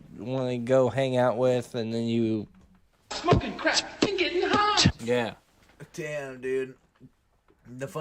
want to go hang out with, and then you Smoking crack and getting high. yeah. Damn, dude. The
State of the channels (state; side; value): identical; both; correlation 1.00